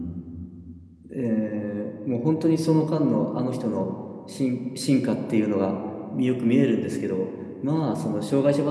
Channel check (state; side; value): identical; both; correlation 1.00